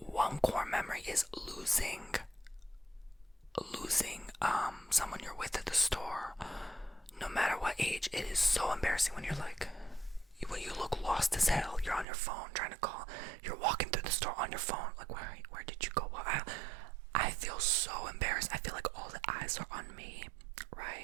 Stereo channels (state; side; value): drops out; left; at 12.1 s